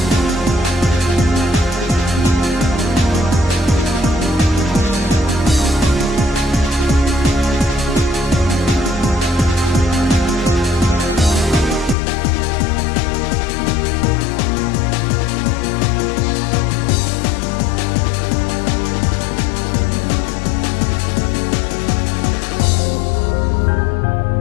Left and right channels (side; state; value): right; drops out; at 12.0 s